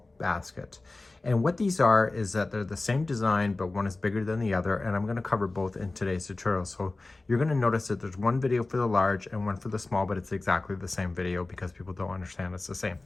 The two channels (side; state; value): right; quieter; 3.2 dB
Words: basket. And what these are is that they're the same design, but one is bigger than the other. And I'm going to cover both in today's tutorial. So you're going to notice that there's one video for the large and one for the small, but it's exactly the same video because people don't understand it's the same